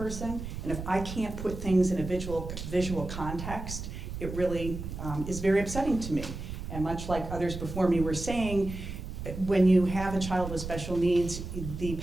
and if I can't put things in a visual context, it really is very upsetting to me. And much like others before me were saying, when you have a child with special needs, the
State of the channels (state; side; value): noise; right; rumble, 8 dB below the sound